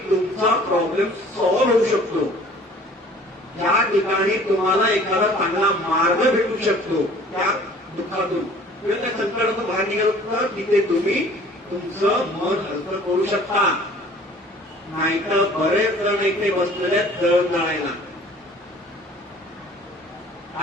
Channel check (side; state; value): both; normal; correlation 0.50